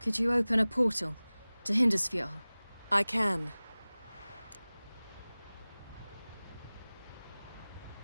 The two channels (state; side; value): inverted; both; correlation -0.99